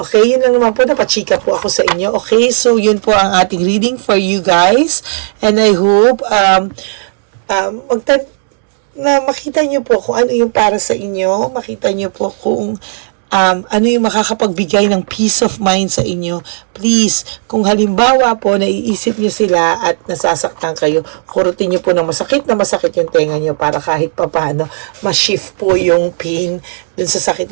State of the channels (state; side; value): silent; left; digital silence